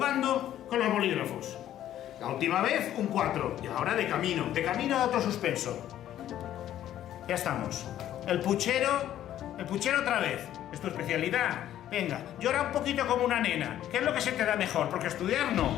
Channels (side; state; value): right; quieter; 12.0 dB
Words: con los bolígrafos. La última vez un 4 y ahora de camino a otro suspenso. Ya estamos. El puchero otra vez. ¿Es tu especialidad? Venga, llora un poquito como una nena. ¿Qué es lo que se te da mejor? Porque estudiar no.